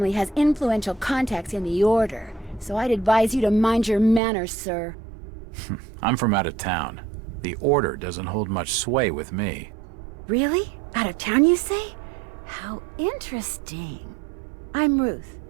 has influential contacts in the Order, so I'd advise you to mind your manners, sir. I'm from out of town. The Order doesn't hold much sway with me. Really? Out of town, you say? How interesting. I'm Ruth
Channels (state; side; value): drops out; left; at 4.2 s